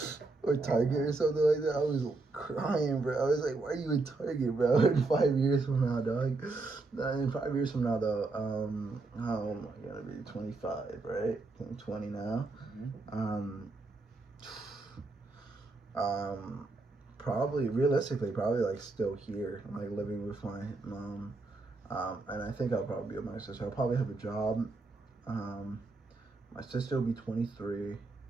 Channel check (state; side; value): quieter; left; 3.5 dB